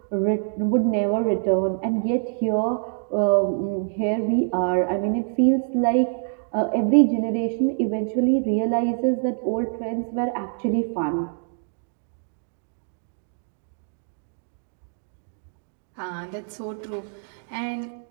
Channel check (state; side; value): silent; left; digital silence